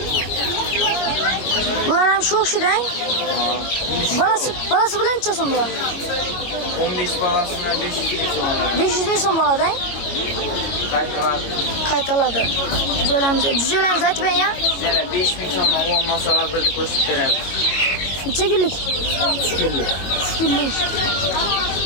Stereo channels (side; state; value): right; late; 22 ms